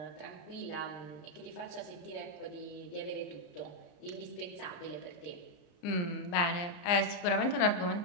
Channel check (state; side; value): late; right; 34 ms